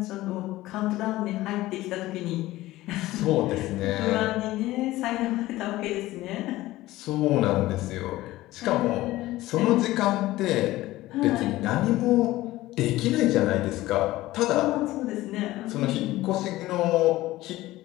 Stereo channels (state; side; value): quieter; right; 17.1 dB